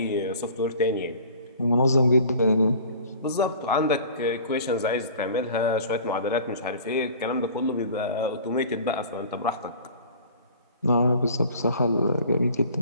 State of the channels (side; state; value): both; inverted; correlation -0.45